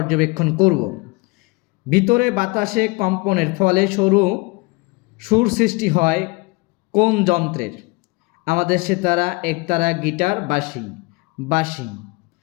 করব। ভিতরে বাতাসে কম্পনের ফলে সুর সৃষ্টি হয় কোন যন্ত্রের? আমাদের সেতারা, একতারা, গিটার, বাঁশি।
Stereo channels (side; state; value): right; quieter; 26.3 dB